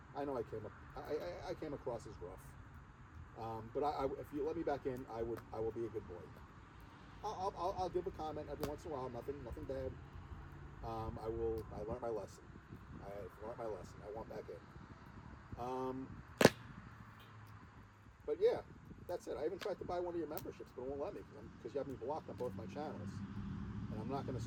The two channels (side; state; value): both; identical; correlation 1.00